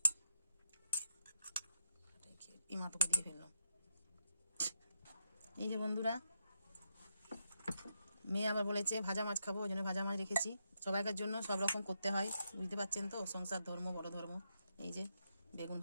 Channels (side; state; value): both; inverted; correlation -0.81